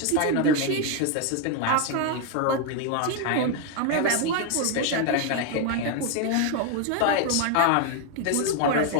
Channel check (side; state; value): both; different; correlation 0.01